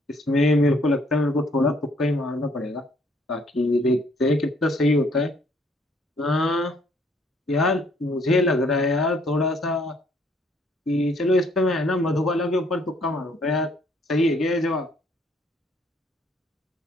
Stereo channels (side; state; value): both; normal; correlation 0.65